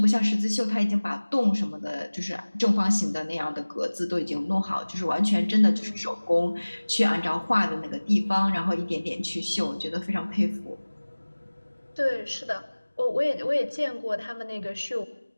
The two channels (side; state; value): both; inverted; correlation -1.00